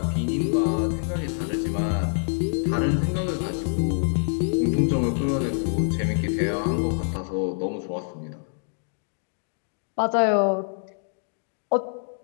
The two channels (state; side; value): silent; right; digital silence